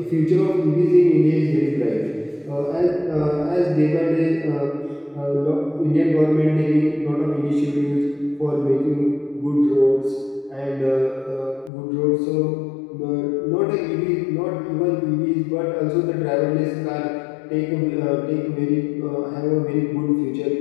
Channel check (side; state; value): right; drops out; at 11.7 s